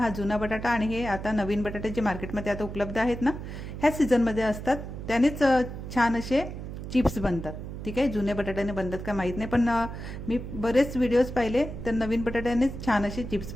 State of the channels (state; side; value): noise; right; hum, 8 dB below the sound